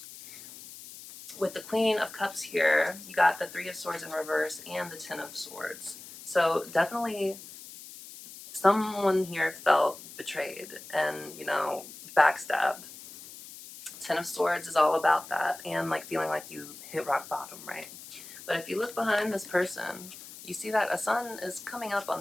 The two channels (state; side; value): noise; left; hiss, 15 dB below the sound